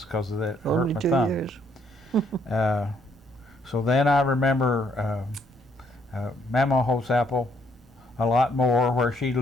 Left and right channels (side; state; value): both; normal; correlation 0.69